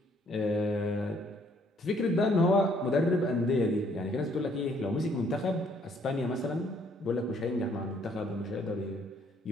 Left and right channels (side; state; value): both; normal; correlation 0.65